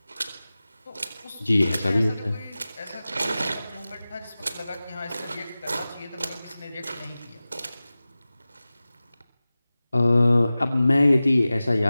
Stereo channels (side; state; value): both; inverted; correlation -0.97